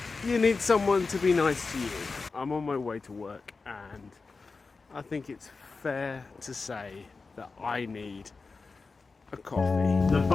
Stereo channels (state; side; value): quieter; right; 4.2 dB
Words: you need someone to be nice to you. I'm on my way to work and I think it's fair to say that I need a coffee. The